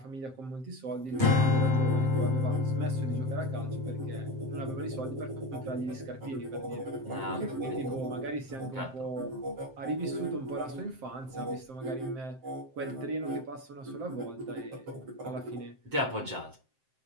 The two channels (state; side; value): late; left; 7.6 ms